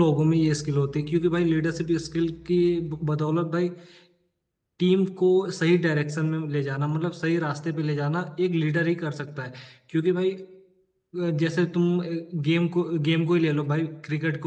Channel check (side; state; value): both; identical; correlation 1.00